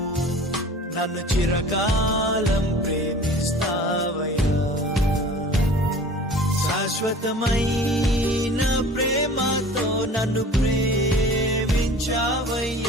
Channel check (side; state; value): both; normal; correlation 0.43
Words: నన్ను చిరకాలం ప్రేమిస్తావయ్యా. శాశ్వతమైన ప్రేమతో నన్ను ప్రేమించావయ్యా.